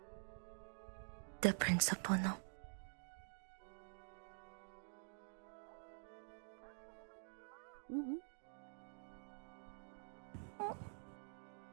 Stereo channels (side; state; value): left; silent; digital silence